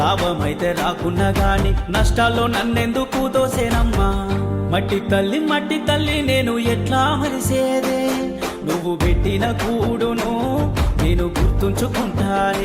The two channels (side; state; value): both; identical; correlation 1.00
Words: రాకున్నా గాని నష్టాల్లో నన్నెందుకు దోసేనమ్మా. మట్టి తల్లి నేను ఎట్లా మరిసేదే, నువ్వు పెట్టిన కూడును నేను